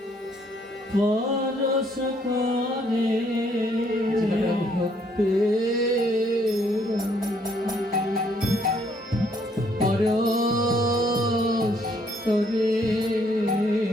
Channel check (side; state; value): both; normal; correlation 0.67